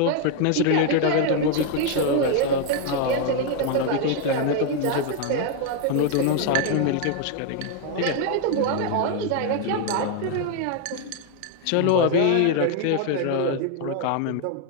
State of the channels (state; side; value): different; both; correlation 0.01